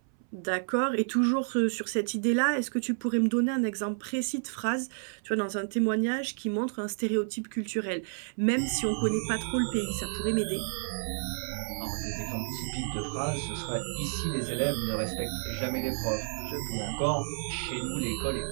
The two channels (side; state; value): left; silent; 57 dB below the other